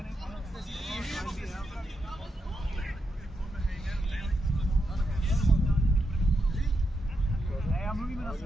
Ne, já mluvíme na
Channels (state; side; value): normal; both; correlation 0.84